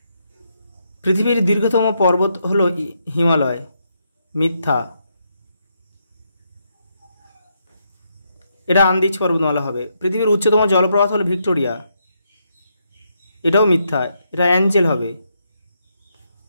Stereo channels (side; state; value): both; inverted; correlation -0.79